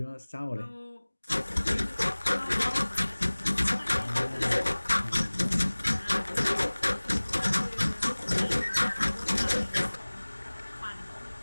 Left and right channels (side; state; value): both; inverted; correlation -1.00